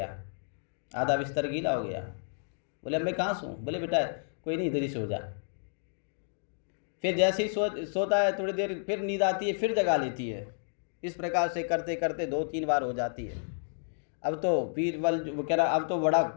आधा बिस्तर गीला हो गया। बोले अब मैं कहाँ सोऊं? बोले बेटा कोई नहीं, इधर ही सो जा। फिर जैसे ही सोता है, थोड़ी देर फिर नींद आती है, फिर जगा लेती है। इस प्रकार से करते करते 2-3 बार हो जाती है। अब तो बीरबल वो कह रहा, अब तो बड़ा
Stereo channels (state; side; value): silent; right; digital silence